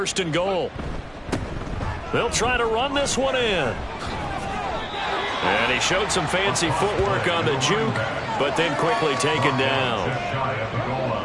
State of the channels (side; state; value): both; identical; correlation 1.00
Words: and goal. They'll try to run this one in. And he showed some fancy footwork on the juke, but then quickly taken down.